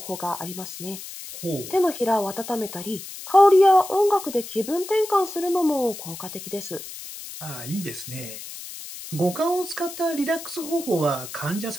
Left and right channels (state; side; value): noise; left; hiss, 12 dB below the sound